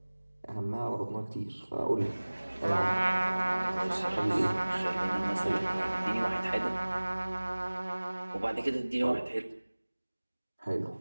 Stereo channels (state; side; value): inverted; both; correlation -1.00